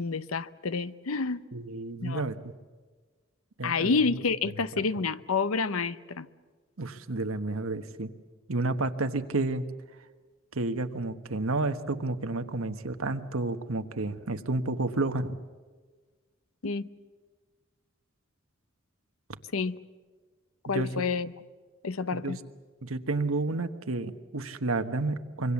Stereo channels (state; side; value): normal; both; correlation 0.20